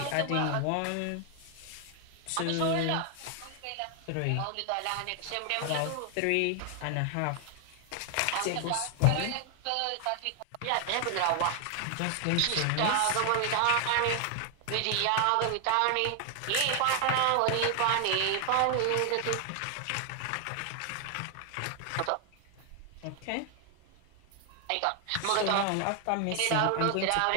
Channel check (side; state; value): both; different; correlation 0.00